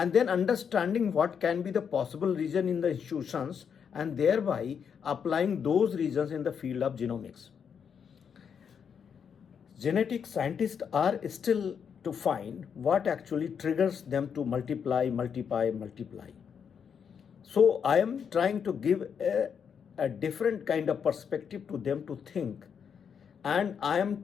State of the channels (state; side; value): quieter; right; 7.1 dB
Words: then understanding what can be the possible reason in the institutions and thereby applying those reasons in the field of genomics. Genetic scientists are still to find what actually triggers them to multiply. So I am trying to give a different kind of perspective to them to think, and I am